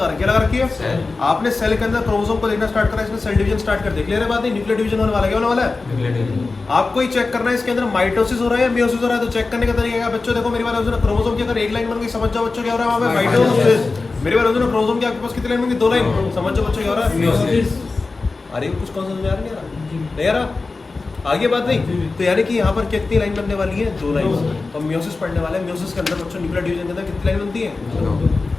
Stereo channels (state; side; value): quieter; right; 3.8 dB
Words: रखी है, लगा रखी है। आपने सेल के अंदर क्रोमोसोम को देखना स्टार्ट करा, इसमें सेल डिवीजन स्टार्ट कर दे। क्लियर है बात? नहीं, न्यूक्लियर डिवीजन होने वाला है। क्या होने वाला है? आपको ही चेक करना है इसके अंदर माइटोसिस हो रहा है या मियोसिस हो रहा है। तो चेक करने का तरीका क्या बच्चों? देखो मेरी बात, क्रोमोसोम की अगर एक लाइन बन गई, समझ जाओ बच्चों क्या हो रहा है वहाँ पे? माइटोसिस। मेरी बात, क्रोमोसोम की आपके पास कितनी लाइन बन गई? 2 लाइन। समझ जाओ बच्चों क्या हो रहा है? मियोसिस। अरे कुछ कौन समझ में आ रहा नहीं आ रहा? आगे बात नहीं। तो यानी कि यहाँ पर कितनी लाइन बनने वाली है? 2 लाइन। और मियोसिस पढ़ने वाले हैं। मियोसिस के अंदर बच्चों न्यूक्लियर डिवीजन के अंदर कितनी लाइन बनती है?